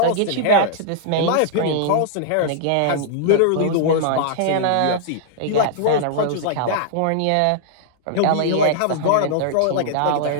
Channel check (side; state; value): both; different; correlation -0.02